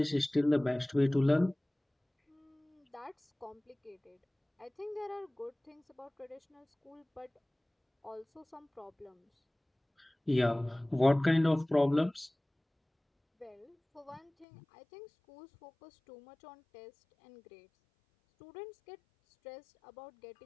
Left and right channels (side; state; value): right; drops out; at 14.5 s